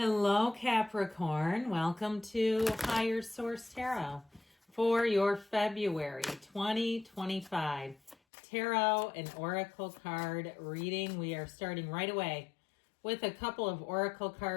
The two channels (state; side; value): drops out; right; at 8.2 s